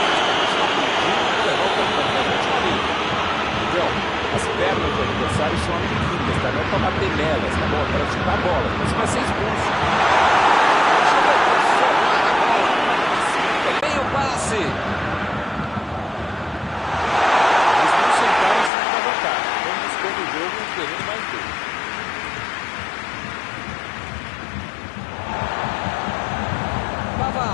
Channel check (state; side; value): drops out; right; at 18.7 s